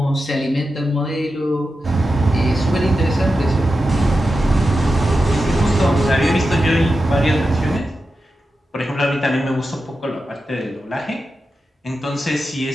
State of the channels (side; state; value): both; normal; correlation 0.90